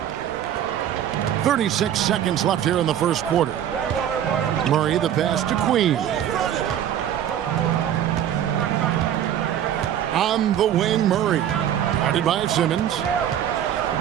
36 seconds left here in the first quarter. Murray the pass to Queen. On the wing, Murray. Guarded by Simmons.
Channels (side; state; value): left; quieter; 10.3 dB